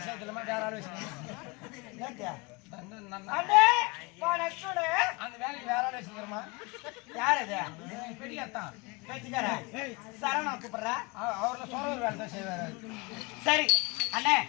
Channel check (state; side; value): quieter; right; 27.0 dB